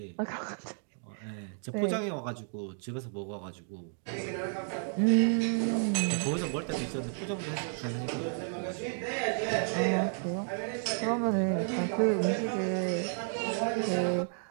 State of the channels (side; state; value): left; silent; 56 dB below the other